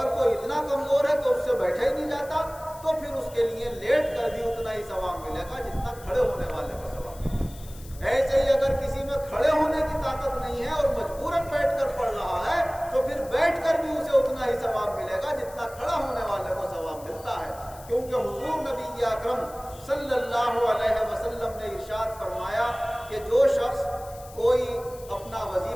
کوئی اتنا کمزور ہے کہ اس سے بیٹھا ہی نہیں جاتا تو پھر اس کے لیے لیٹ کر بھی اتنا ہی ثواب ملے گا جتنا کھڑے ہونے والے کو ثواب ملے گا. ایسے ہی اگر کسی میں کھڑے ہونے کی طاقت نہیں ہے اور مجبوراً بیٹھ کر پڑھ رہا ہے تو پھر بیٹھ کر بھی اسے اتنا ہی ثواب ملے گا جتنا کھڑا ہونے والے کو ثواب ملتا ہے. کیونکہ حضور نبی اکرم صلی اللہ علیہ وسلم نے ارشاد فرمایا کہ جو شخص کوئی اپنا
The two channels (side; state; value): left; noise; hiss, 20 dB below the sound